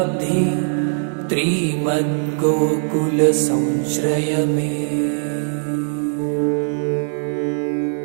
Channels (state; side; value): silent; left; digital silence